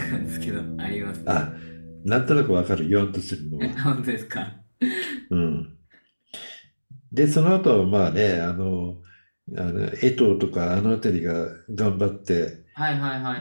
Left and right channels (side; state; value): both; inverted; correlation -1.00